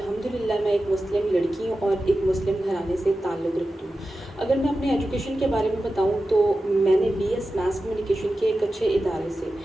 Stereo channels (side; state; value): both; normal; correlation 0.93